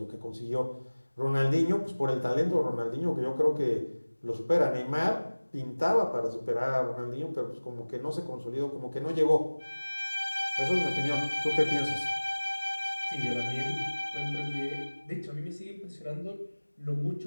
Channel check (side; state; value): both; inverted; correlation -1.00